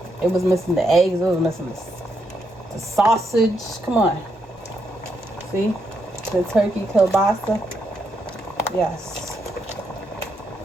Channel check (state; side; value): normal; both; correlation 0.79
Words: It was missing the eggs. It was missing the sausage. Come on. See? The turkey kielbasa. Yes.